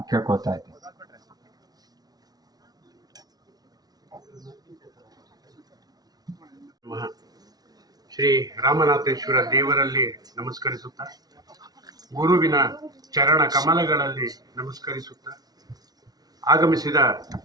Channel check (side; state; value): left; late; 0.19 ms